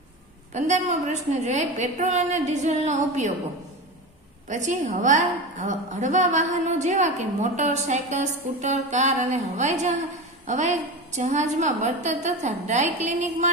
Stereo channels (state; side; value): normal; both; correlation 0.25